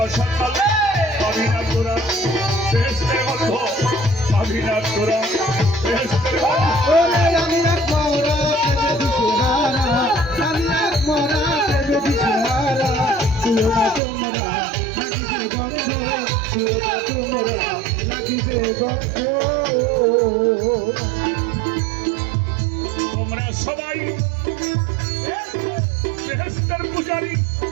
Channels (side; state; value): left; drops out; at 14.0 s